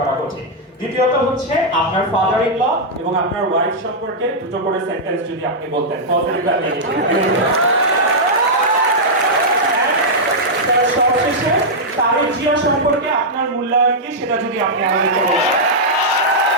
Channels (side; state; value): both; normal; correlation -0.07